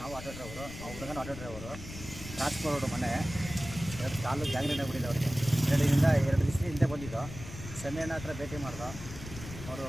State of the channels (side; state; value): left; noise; rumble, 11 dB below the sound